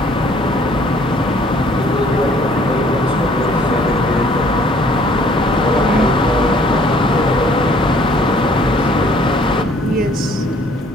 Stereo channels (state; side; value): normal; both; correlation 0.59